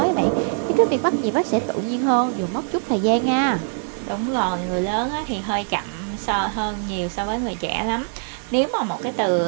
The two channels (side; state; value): left; silent; 61 dB below the other